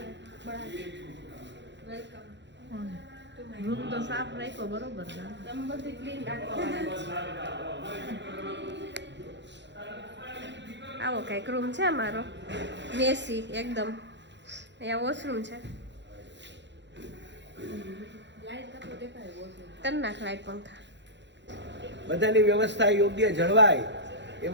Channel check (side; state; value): left; late; 0.52 ms